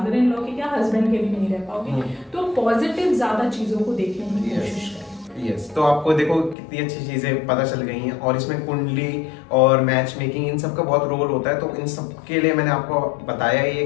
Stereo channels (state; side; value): drops out; right; at 6.6 s